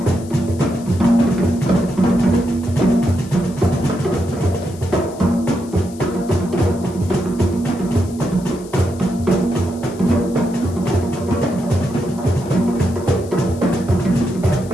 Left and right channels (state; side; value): noise; left; hiss, 21 dB below the sound